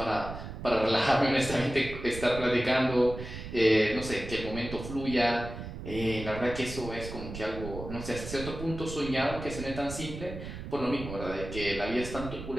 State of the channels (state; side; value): noise; right; rumble, 9 dB below the sound